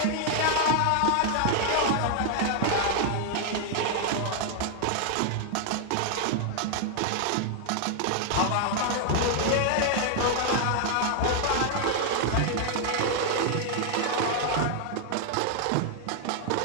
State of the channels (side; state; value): both; different; correlation 0.00